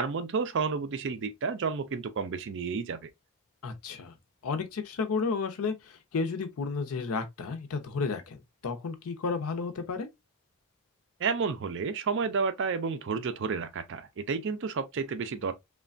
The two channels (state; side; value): normal; both; correlation 0.00